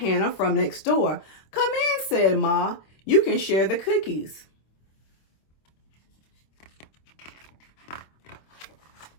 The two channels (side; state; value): right; late; 26 ms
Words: from next door. Come in, said Ma. You can share the cookies.